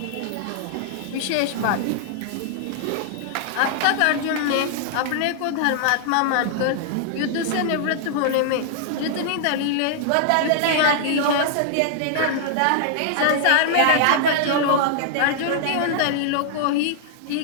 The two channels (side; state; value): both; different; correlation -0.01